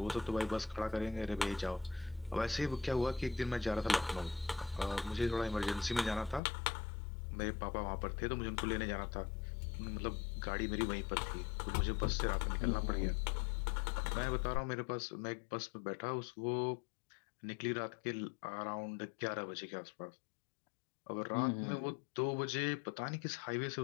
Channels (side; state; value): right; drops out; at 6.4 s